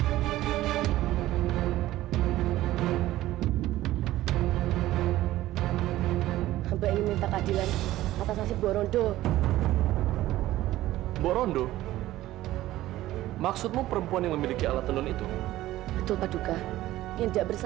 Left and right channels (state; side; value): quieter; left; 15.5 dB